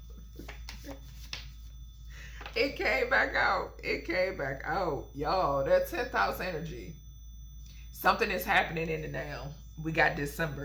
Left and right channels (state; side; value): identical; both; correlation 1.00